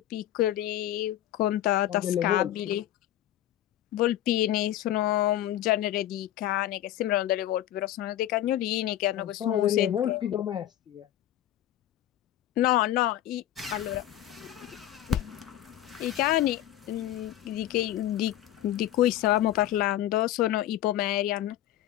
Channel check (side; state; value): right; quieter; 12.9 dB